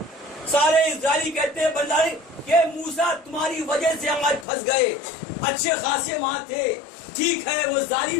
سارے اسرائیلی کہتے ہیں بنداری کہ موسیٰ تمہاری وجہ سے ہم آج پھنس گئے، اچھے خاصے وہاں تھے، ٹھیک ہے وہ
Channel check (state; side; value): drops out; right; at 4.5 s